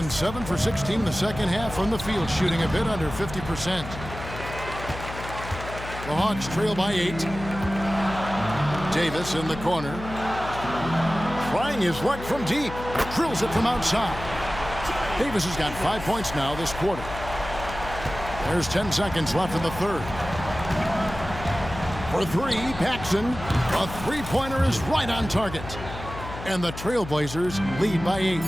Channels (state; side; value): noise; left; hum, 11 dB below the sound